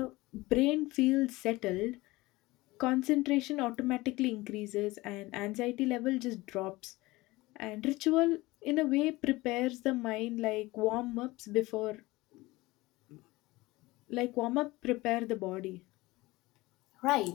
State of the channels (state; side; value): quieter; right; 20.4 dB